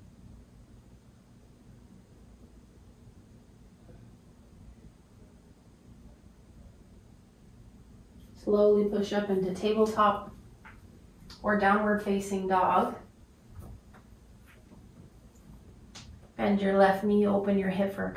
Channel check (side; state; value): both; identical; correlation 1.00